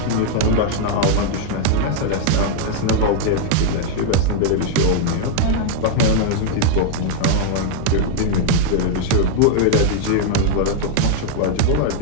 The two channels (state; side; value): different; both; correlation -0.01